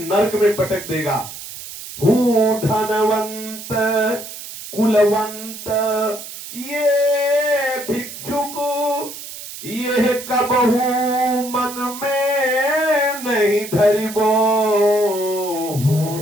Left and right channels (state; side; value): noise; right; hiss, 12 dB below the sound